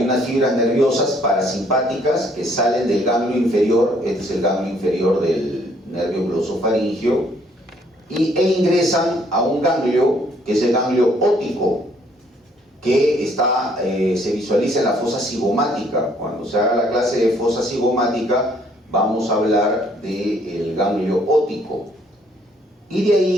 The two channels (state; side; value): normal; both; correlation 0.65